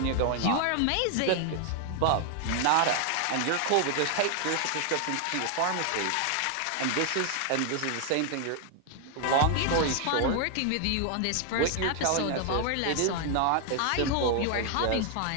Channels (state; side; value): different; both; correlation 0.00